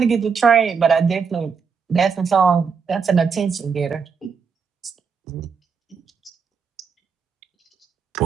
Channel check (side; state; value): left; quieter; 5.9 dB